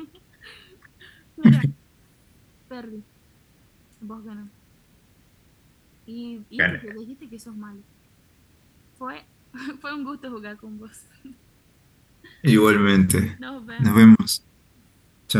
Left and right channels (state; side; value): identical; both; correlation 1.00